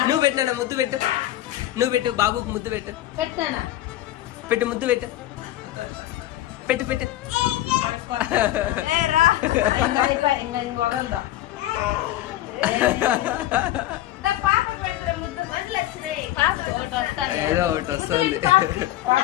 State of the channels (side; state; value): right; quieter; 14.4 dB